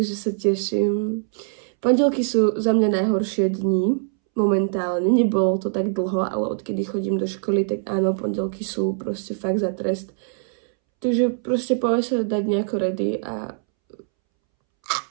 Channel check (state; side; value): silent; left; 64 dB below the other